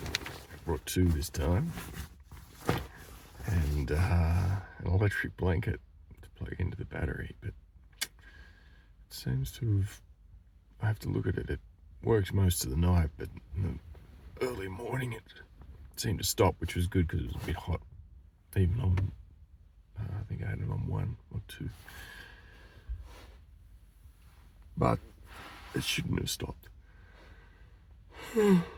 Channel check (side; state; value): both; identical; correlation 1.00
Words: brought 2 this time, and an electric blanket to plug into the battery, but it seems to have, I have to look at it, it works most of the night, but in the early morning it seemed to stop, which was good because it was a bit hot, even on, I think I had it on 1 or 2. But it shouldn't have stopped. So